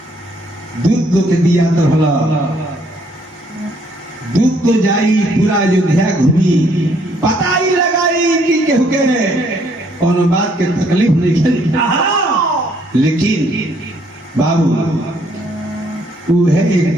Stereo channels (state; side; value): normal; both; correlation 0.66